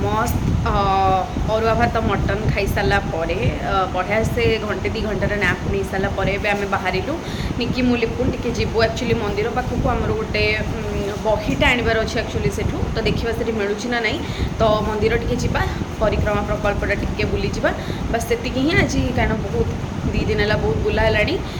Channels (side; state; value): both; identical; correlation 1.00